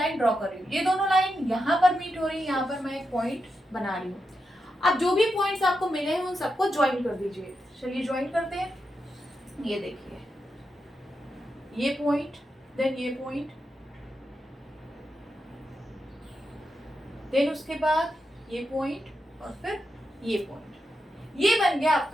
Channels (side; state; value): both; normal; correlation 0.87